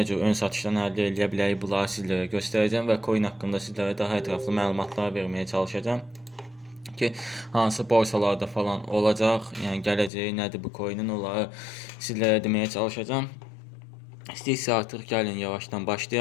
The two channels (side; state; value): right; drops out; at 10.1 s